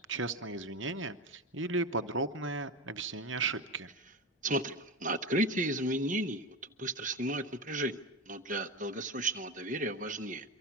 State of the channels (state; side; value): normal; both; correlation 0.20